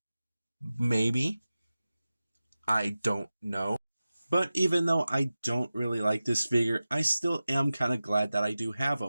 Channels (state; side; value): inverted; both; correlation -0.95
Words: Maybe. I don't know. But even though I don't really like this figure, I still am kind of glad that I do have